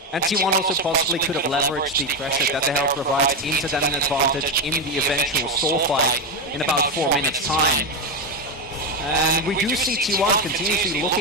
And T1 also possibly could have leveraged the pressure that the Herald provides into that an advantage in the eventual soul fight in about 4 minutes' time. And we do see T1 continuously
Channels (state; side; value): normal; both; correlation 0.10